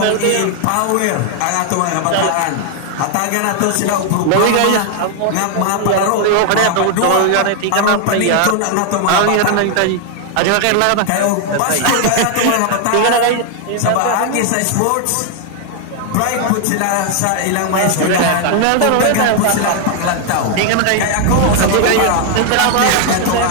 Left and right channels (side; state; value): both; different; correlation 0.00